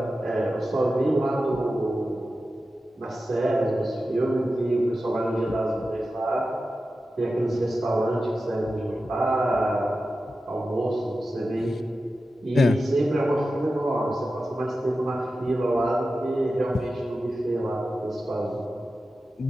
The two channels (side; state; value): both; normal; correlation 0.93